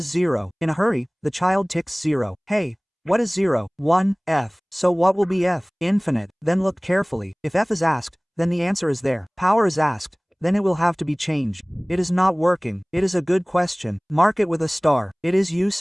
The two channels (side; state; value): both; identical; correlation 1.00